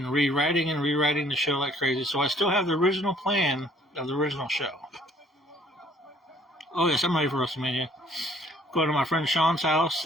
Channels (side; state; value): both; normal; correlation 0.60